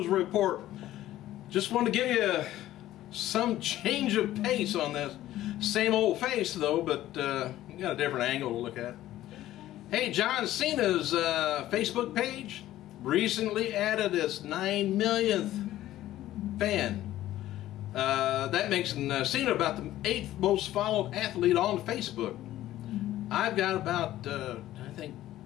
report. Just wanted to give you some change of pace on this. Same old face though, but you got a different angle to look at. Hey, John Cena's Facebook page recently added its 9 millionth fan. That makes Cena about the 8th most followed athlete on Facebook. I've got about, I think,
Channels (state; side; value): quieter; right; 14.2 dB